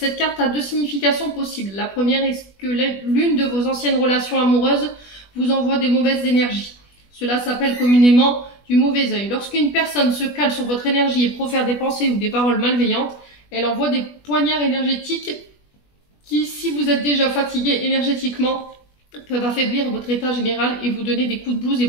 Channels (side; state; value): right; late; 20 ms